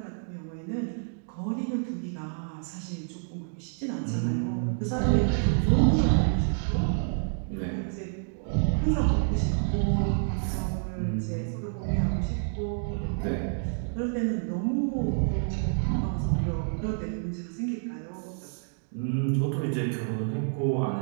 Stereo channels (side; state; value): left; silent; digital silence